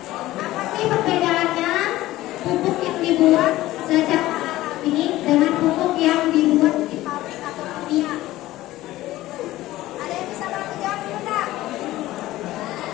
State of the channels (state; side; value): quieter; right; 16.3 dB